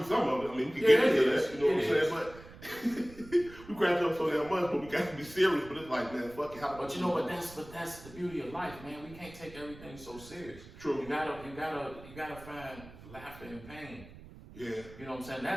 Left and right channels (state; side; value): noise; right; rumble, 18 dB below the sound